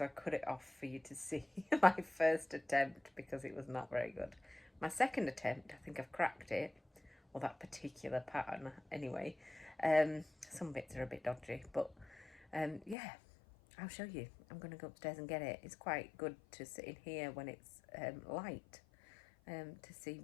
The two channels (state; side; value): drops out; right; at 13.0 s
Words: I cut it off for you to see my first attempt because it was not very good. My second attempt, I think I've cracked it, or that particular pattern anyway. Some bits are a bit dodgy, but yeah, I'll show you. I'm going to go upstairs and get it. It's quite good to sit in here when it's light to see